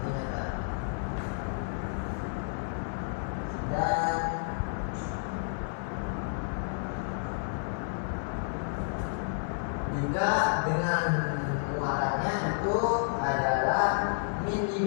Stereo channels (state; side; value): silent; right; 57 dB below the other